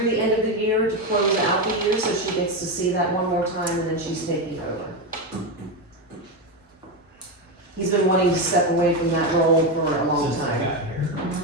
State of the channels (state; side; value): normal; both; correlation 0.12